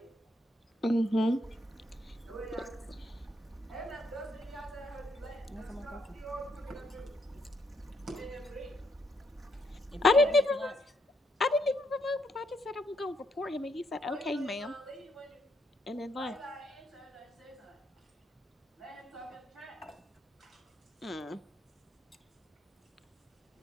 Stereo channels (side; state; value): both; normal; correlation 0.74